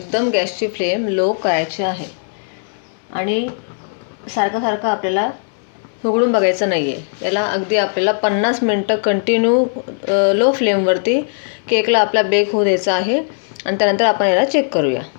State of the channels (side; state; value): right; silent; digital silence